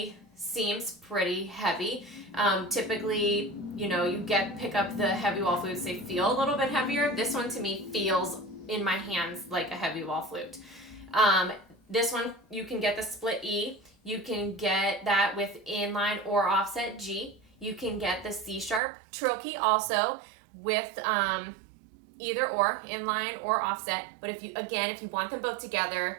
seems pretty heavy. Typically, you know, you pick up the heavy wall flutes, they feel a little bit heavier. This one to me feels in my hands like a heavy wall flute. This one, you can get the split E. You can get that with inline or offset G. You can get the C sharp trill key also with either or, inline or offset. But if you want them both together,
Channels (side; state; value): left; drops out; at 18.8 s